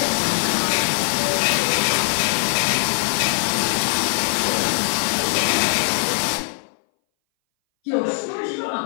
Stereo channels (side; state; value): right; silent; 61 dB below the other